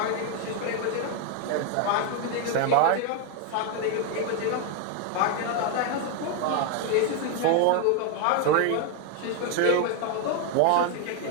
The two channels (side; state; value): both; different; correlation 0.01